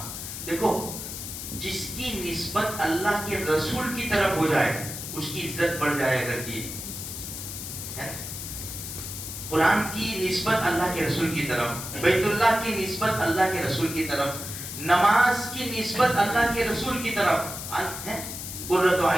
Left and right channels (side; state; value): left; noise; hiss, 8 dB below the sound